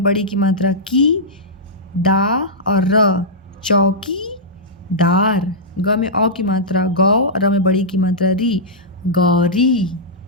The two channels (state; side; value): normal; both; correlation -0.13